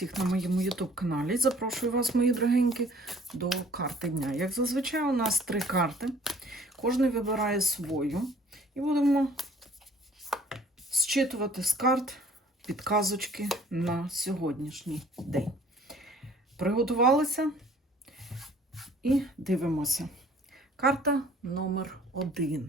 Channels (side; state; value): both; normal; correlation 0.54